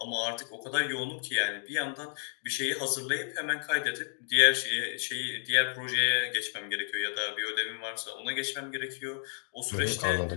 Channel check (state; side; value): silent; right; digital silence